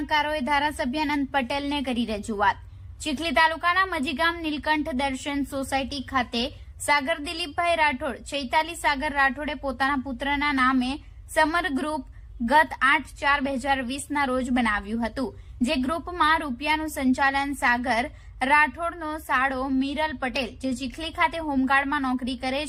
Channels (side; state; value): both; identical; correlation 1.00